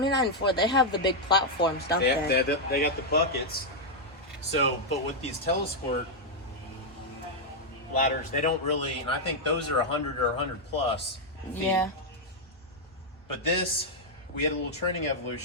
and 4, they have the big platforms, don't they? They got the buckets. So, but with these Telesquirt ladders, they don't really, and I think those are 100 or 100 plus feet. Yeah. But this, we had a little training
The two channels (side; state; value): both; normal; correlation -0.02